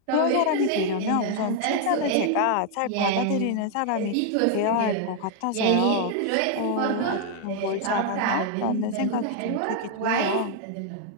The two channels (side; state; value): both; different; correlation 0.00